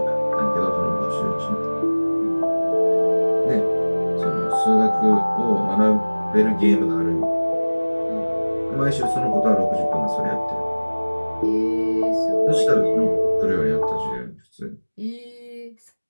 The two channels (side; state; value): both; inverted; correlation -1.00